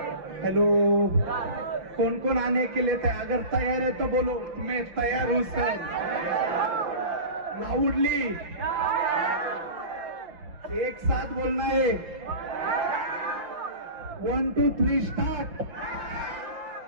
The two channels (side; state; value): left; late; 5.8 ms